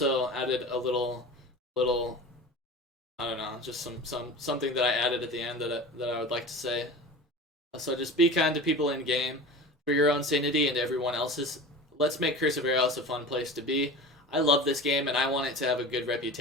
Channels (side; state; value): both; normal; correlation 0.34